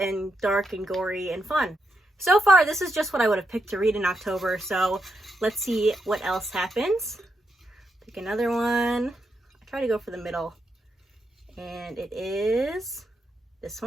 dark and gory and fun. So far, this is just what I would have picked to read in October, so let's see what else happens. Pick another one. I try to go for the middle, and it is this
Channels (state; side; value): normal; both; correlation 0.82